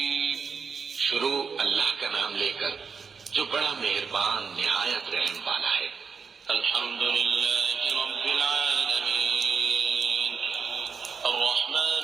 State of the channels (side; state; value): left; quieter; 5.6 dB